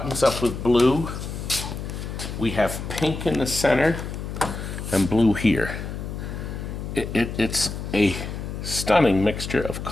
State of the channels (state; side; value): noise; left; hum, 7 dB below the sound